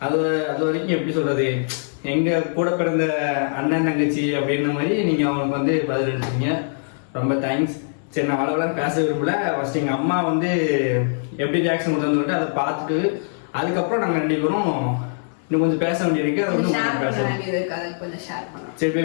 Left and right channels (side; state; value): right; silent; 64 dB below the other